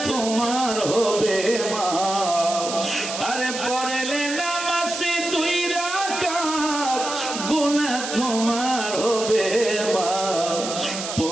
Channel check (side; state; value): right; noise; hiss, 6 dB below the sound